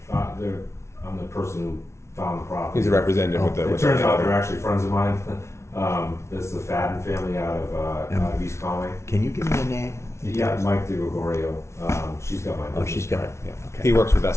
the person who found the property. He's a representative with It turns out they're actually friends of mine. It's the Fadden family out of East Conway. Can you give me a name? Yeah, Mike DeGregorio. She's got my. Oh, she's got it. Yeah. Okay. He works with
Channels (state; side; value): late; right; 0.13 ms